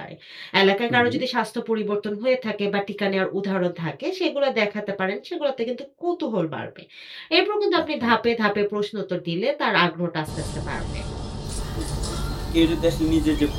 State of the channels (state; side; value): identical; both; correlation 1.00